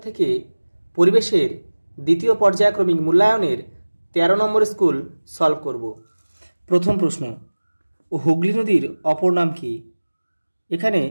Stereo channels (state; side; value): inverted; both; correlation -1.00